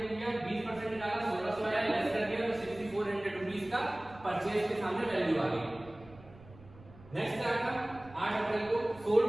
लिया, 20% निकाला, 1600 आया, लेस कर दिया तो 6400 रुपीस का परचेज के सामने वैल्यू आ गई। नेक्स्ट क्या था? 8 अप्रैल को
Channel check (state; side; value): noise; right; rumble, 21 dB below the sound